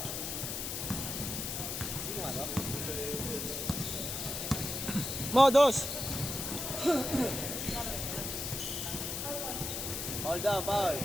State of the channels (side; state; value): left; noise; hiss, 3 dB below the sound